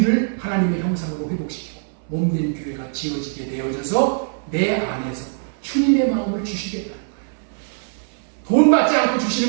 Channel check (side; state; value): left; silent; 63 dB below the other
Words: 하나님의 형상으로 회복시키고 몸된 교회가 지어지게 되어져서 내 안에서 주님의 마음을 주시겠다는 거예요. 돈 받지 않고